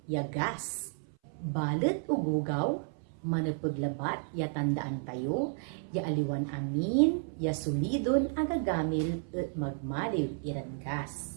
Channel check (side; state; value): left; silent; 56 dB below the other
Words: yagas. Balet ugugaw, manapaglabat ya tandaan tayo, ya aliwan amin, ya sulidon agagamil at magmaliw